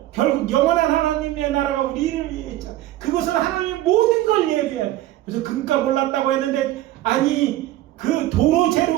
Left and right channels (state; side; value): quieter; left; 14.8 dB